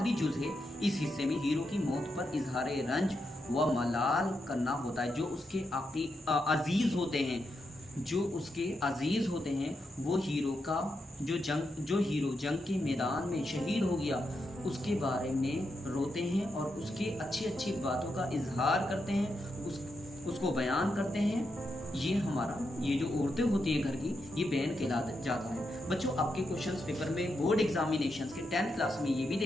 जुज है। इस हिस्से में हीरो की मौत पर इजहार रंज व मलाल करना होता है। जो उसके अजीज होते हैं, जो उसके अजीज होते हैं, वो हीरो का जो हीरो जंग के मैदान में शहीद हो गया उसके बारे में रोते हैं और उसके अच्छी अच्छी बातों का इजहार करते हैं, उसको बयान करते हैं। ये जो औरतें होती है घर की, ये बैन कहला जाता है। बच्चों आपके क्वेश्चंस पेपर में बोर्ड एग्जामिनेशंस के 10th क्लास में ये भी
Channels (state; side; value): normal; both; correlation 0.84